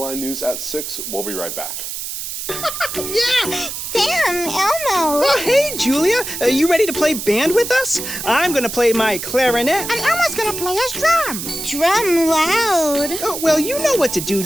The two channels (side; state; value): right; noise; hiss, 6 dB below the sound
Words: Eye News at 6. We'll be right back. Yeah! Sam, Elmo! Oh, hey, Julia! Are you ready to play band with us? I'm gonna play my clarinet. And Elmo's gonna play his drum. Drum loud. Oh, well, you know what to do,